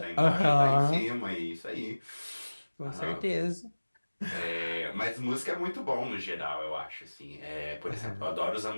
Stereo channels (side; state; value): both; inverted; correlation -1.00